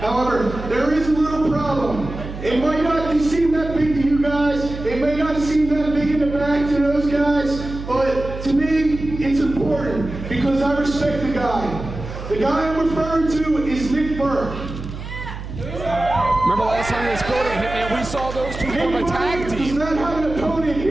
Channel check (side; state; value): right; noise; hum, 9 dB below the sound